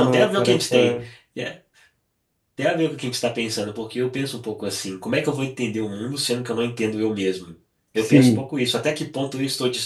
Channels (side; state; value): both; identical; correlation 1.00